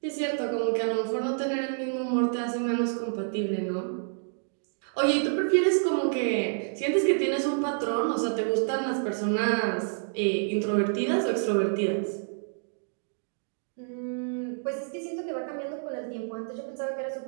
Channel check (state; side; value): silent; left; digital silence